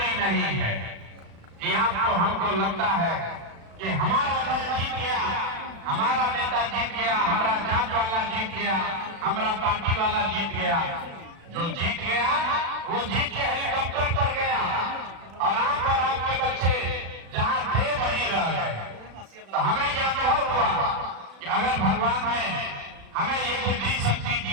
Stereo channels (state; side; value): late; left; 36 ms